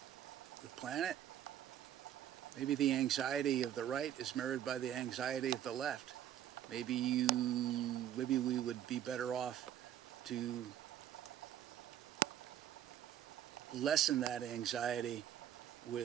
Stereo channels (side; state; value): left; quieter; 10.9 dB